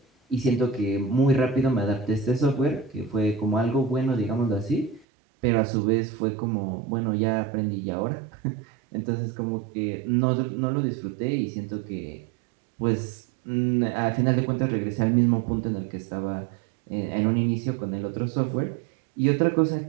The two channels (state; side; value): drops out; left; at 5.1 s